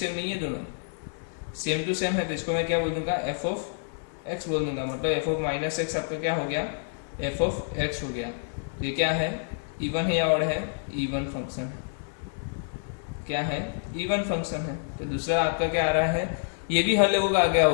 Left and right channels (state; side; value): silent; right; 59 dB below the other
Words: नहीं है, दोनों सेम टू सेम है, तो इसको मैं क्या बोल दूंगा, एफ ऑफ एक्स बोल दूंगा। मतलब एफ ऑफ माइनस एक्स आपका क्या हो गया, एफ ऑफ एक्स हो गया। ये क्या है, इवन है या ऑड है, इवन फंक्शन है। क्या है, इवन फंक्शन है। तो दूसरा आपका क्या आ रहा है, ये भी हर लोगों का आ गया